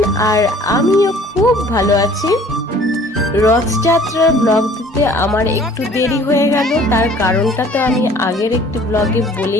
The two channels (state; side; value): normal; both; correlation 0.52